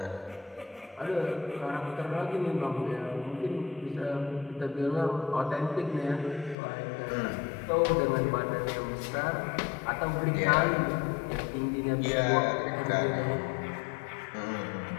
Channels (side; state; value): right; drops out; at 6.6 s